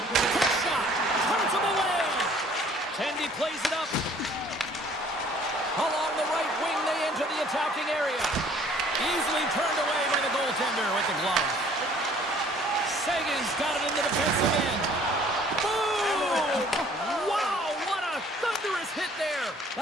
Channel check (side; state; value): both; normal; correlation 0.56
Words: Quick shot. Turns him away. Tendy plays it up. Along the right wing, they enter the attacking area. Easily turned away by the goaltender with the glove. Sagan's got it in the defensive end. Boom! Wow, what a thunderous hit there.